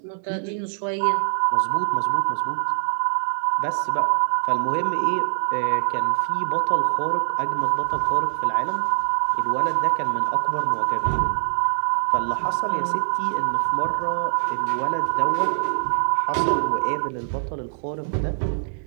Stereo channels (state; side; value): silent; left; digital silence